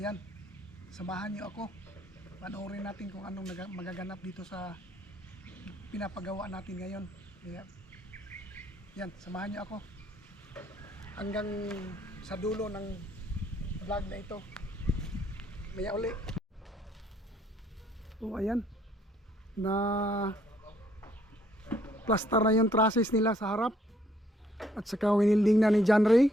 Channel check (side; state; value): both; normal; correlation 0.66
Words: samahan niyo ako. Panoorin natin kung anong magaganap dito sa pinapagawa natin ngayon. Kaya yan, samahan niyo ako hanggang sa dulo ng vlog na ito. Maya uli. So ayan, na plaster na yung trusses nila sa harap at saka winilding na ni John Ray.